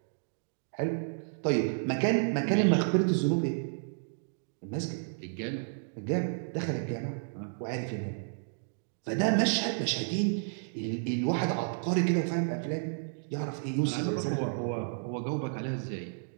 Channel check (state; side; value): silent; left; digital silence